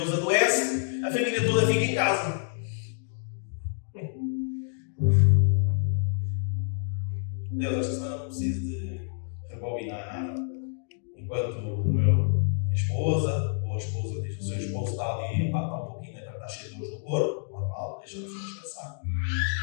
adoece, a família toda fica em casa. Deus, esta semana não preciso de rebobinar nada. Enquanto minha esposa, ou a esposa diz que o seu esposo está ali, está um pouquinho, está cheio de dores no corpo, normal, deixa a pessoa descansar.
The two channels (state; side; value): silent; right; digital silence